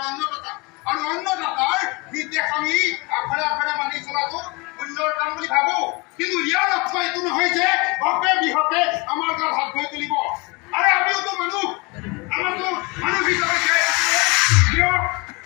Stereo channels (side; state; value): right; quieter; 26.5 dB